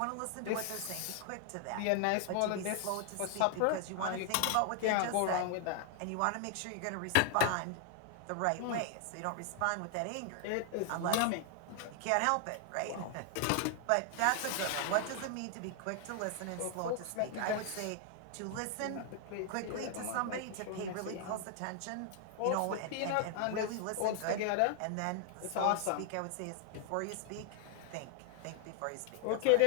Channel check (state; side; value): different; both; correlation 0.00